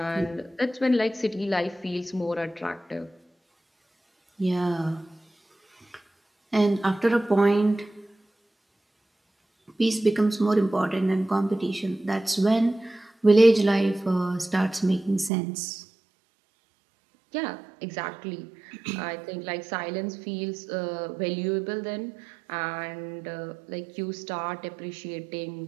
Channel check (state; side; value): drops out; left; at 15.3 s